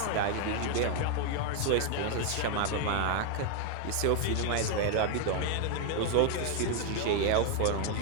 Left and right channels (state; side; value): different; both; correlation 0.01